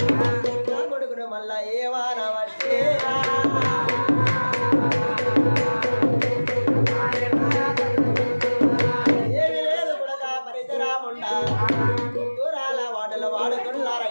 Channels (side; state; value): both; inverted; correlation -1.00